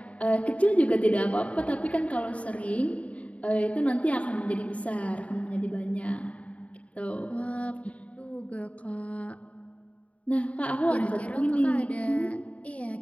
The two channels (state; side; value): late; right; 0.066 ms